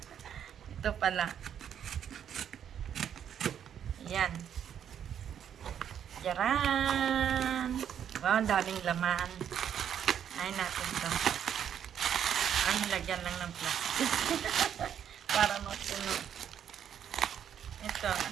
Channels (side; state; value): left; quieter; 9.0 dB